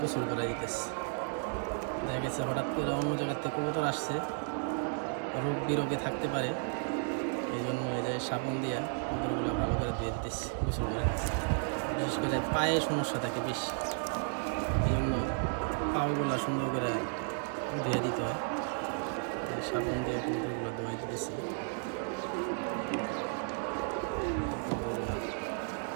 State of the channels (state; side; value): silent; left; 55 dB below the other